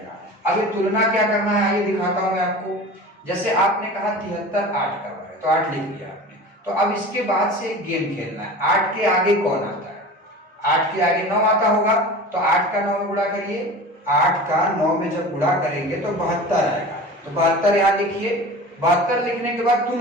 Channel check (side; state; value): both; normal; correlation 0.36